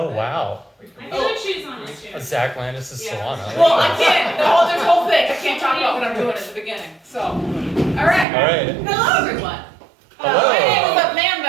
wow. I feel like she's on this too. Zach Landis' Solana. Well, I can't. There's a whole thing. I can't talk about what I'm doing at the beginning. So, all right. All right. Hello, everyone. Hello. My name is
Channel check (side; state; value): left; drops out; at 8.2 s